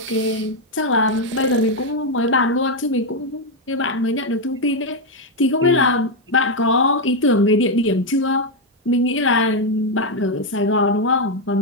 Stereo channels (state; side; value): normal; both; correlation 0.03